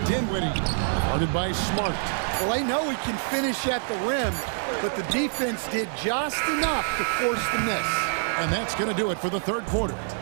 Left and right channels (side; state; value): left; silent; 57 dB below the other